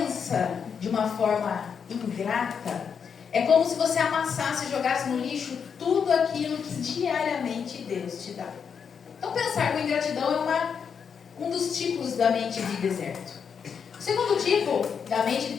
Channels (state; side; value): quieter; right; 6.8 dB